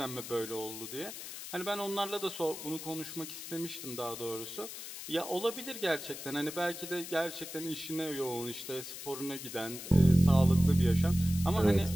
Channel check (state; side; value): noise; left; hiss, 10 dB below the sound